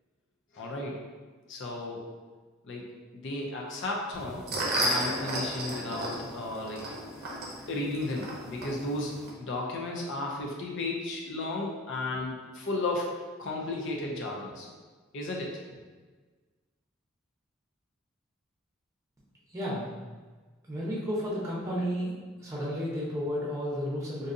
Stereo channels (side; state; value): both; normal; correlation 0.36